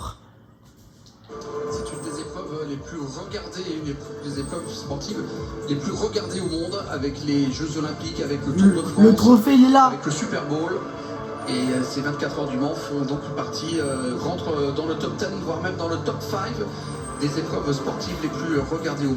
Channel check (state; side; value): identical; both; correlation 1.00